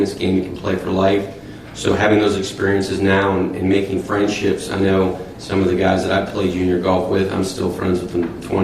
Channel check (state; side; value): identical; both; correlation 1.00